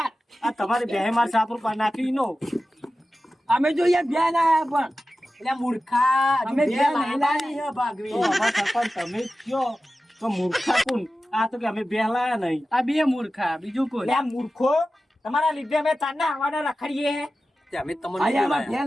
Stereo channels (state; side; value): normal; both; correlation 0.94